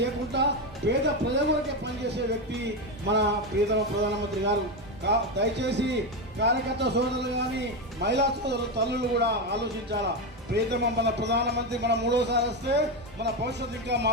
లేకుండా పేద ప్రజల వరకే పనిచేసే వ్యక్తి మన ప్రియతమ ప్రధానమంత్రి గారు. దయచేసి కార్యకర్త సోదరులు కానీ మహిళా సోదరులు తల్లులు కూడా ఆలోచించాలా. ప్రియతమ మన ప్రధానమంత్రి మన 3వసారి వస్తే మన భవిష్యత్తు ఇంకా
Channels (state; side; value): normal; both; correlation 0.12